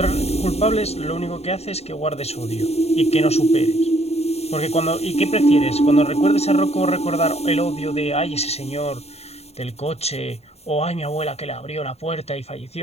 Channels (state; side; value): late; right; 0.30 ms